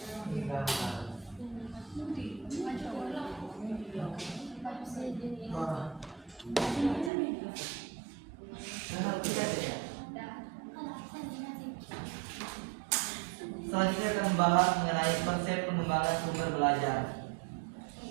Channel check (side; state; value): left; drops out; at 7.1 s